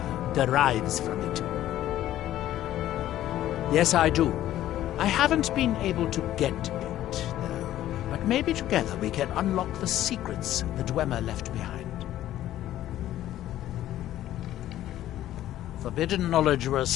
derives from it. Yes, I do. I haven't been able to get it, though. But maybe together we can unlock the secrets the Dwemer left behind. Forbidden knowledge was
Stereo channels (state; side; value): quieter; right; 13.2 dB